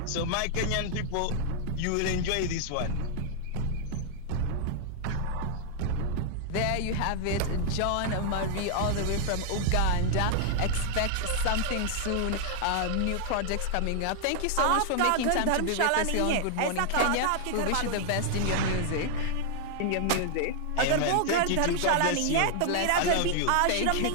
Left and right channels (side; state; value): both; different; correlation 0.00